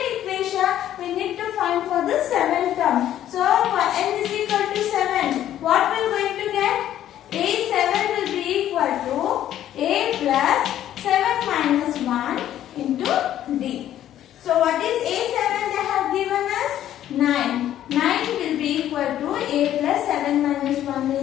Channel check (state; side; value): quieter; right; 11.8 dB